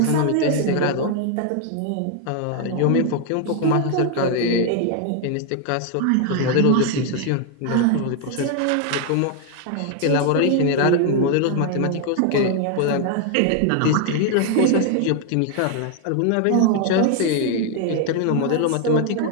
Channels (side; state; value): both; different; correlation 0.01